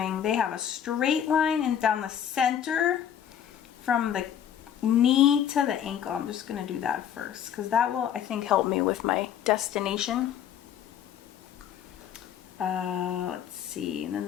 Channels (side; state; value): right; quieter; 9.5 dB